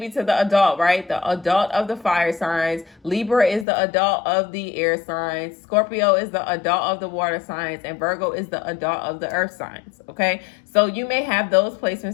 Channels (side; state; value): right; drops out; at 3.7 s